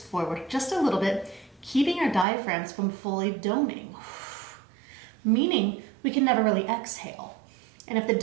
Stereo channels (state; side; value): drops out; left; at 2.2 s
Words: forward just a little bit, keeping our diaphragms from fully doming, meaning we can never really exhale. And if the